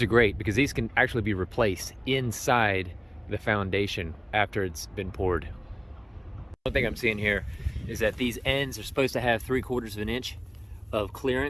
are great because these can actually be replaced inside the foundation after it's been poured. One thing I'm seeing here is that these ends are supposed to have 3/4 of an inch of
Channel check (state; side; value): identical; both; correlation 1.00